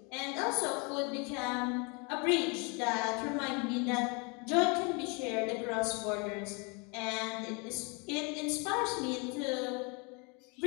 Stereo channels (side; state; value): right; quieter; 31.8 dB